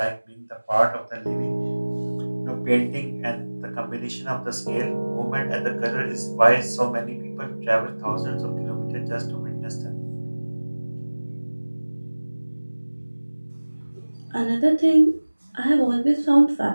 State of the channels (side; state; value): both; inverted; correlation -1.00